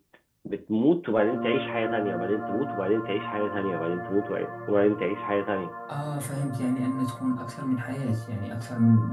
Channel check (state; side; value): identical; both; correlation 1.00